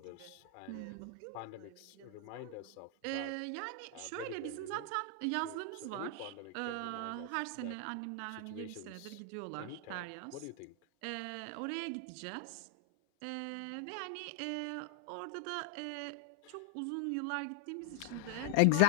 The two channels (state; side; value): different; both; correlation 0.00